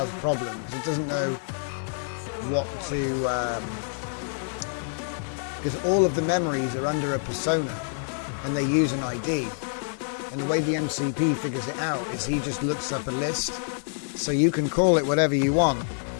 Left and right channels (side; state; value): right; silent; digital silence